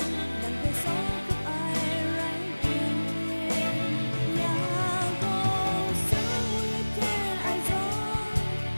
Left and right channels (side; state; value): both; inverted; correlation -1.00